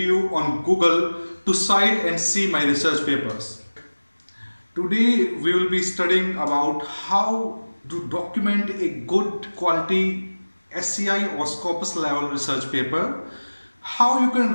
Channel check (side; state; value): both; inverted; correlation -1.00